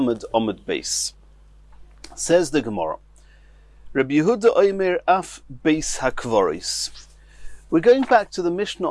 omid base. Says the Gemara, Rabbi Yehuda Omer af beis hakvoris. We're going back to the Mishnah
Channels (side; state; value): both; identical; correlation 1.00